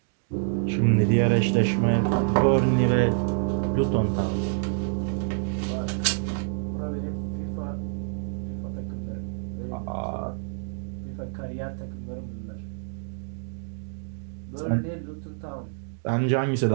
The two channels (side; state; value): left; silent; digital silence